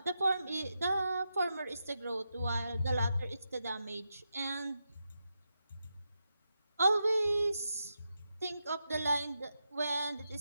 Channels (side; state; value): both; inverted; correlation -0.87